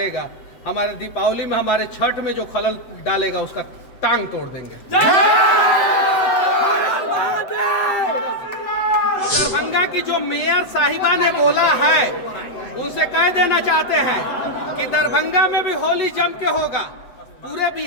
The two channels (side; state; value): right; late; 7.9 ms